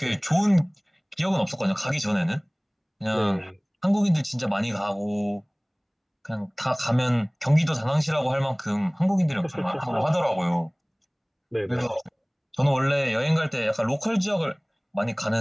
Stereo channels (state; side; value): identical; both; correlation 1.00